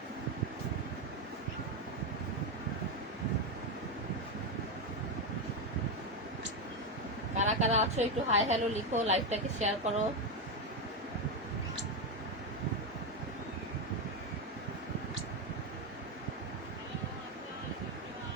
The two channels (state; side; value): normal; both; correlation 0.09